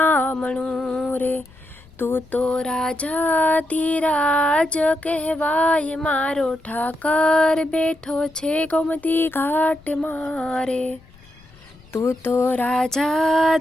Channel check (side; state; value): left; noise; rumble, 26 dB below the sound